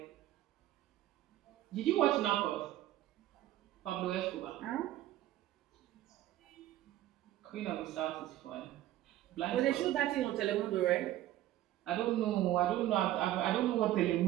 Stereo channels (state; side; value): quieter; left; 14.0 dB